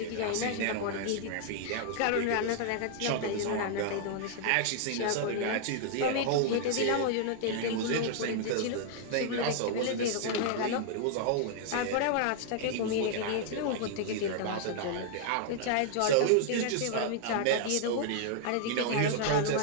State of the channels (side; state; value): both; different; correlation -0.01